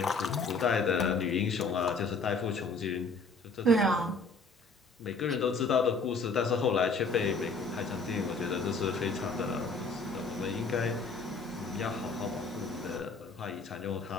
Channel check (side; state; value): right; quieter; 3.6 dB